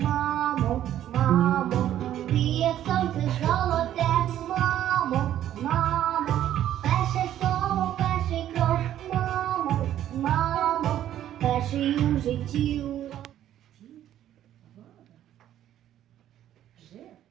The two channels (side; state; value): left; quieter; 11.7 dB